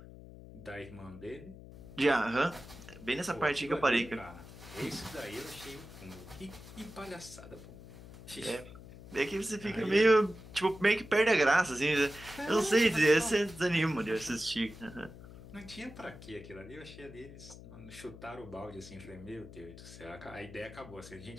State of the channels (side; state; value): left; noise; hum, 16 dB below the sound